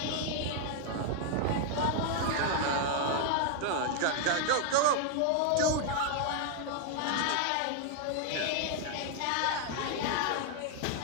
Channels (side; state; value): both; different; correlation 0.00